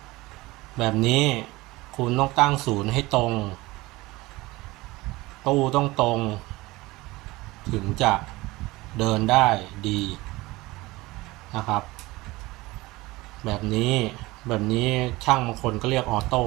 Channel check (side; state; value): left; quieter; 20.6 dB